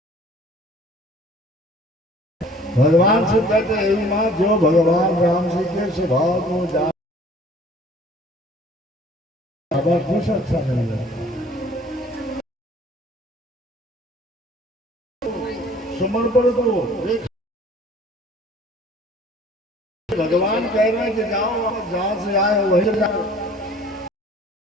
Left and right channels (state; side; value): normal; both; correlation 0.52